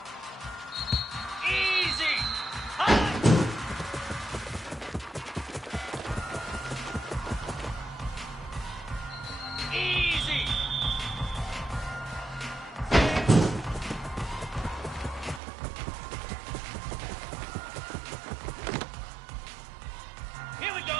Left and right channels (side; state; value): left; drops out; at 15.4 s